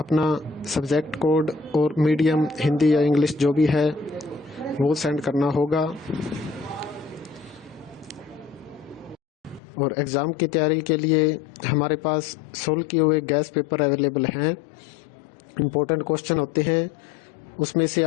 सब्जेक्ट कोड और मीडियम हिंदी या इंग्लिश जो भी है वो सेंड करना होगा। और एग्ज़ाम की तैयारी के लिए हमारे पास सोल्व किए हुए गैस पेपर अवेलेबल हैं। इम्पोर्टेंट क्वेश्चन होते हैं, उसमें से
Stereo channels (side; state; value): right; drops out; at 9.6 s